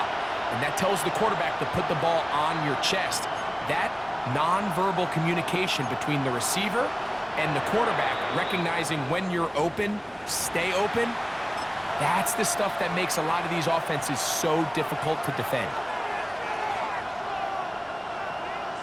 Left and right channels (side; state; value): both; identical; correlation 1.00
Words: And that tells the quarterback to put the ball on your chest. That nonverbal communication between the receiver and the quarterback, recognizing when you're open, stay open, that's the stuff that makes a lot of these offenses so difficult to defend.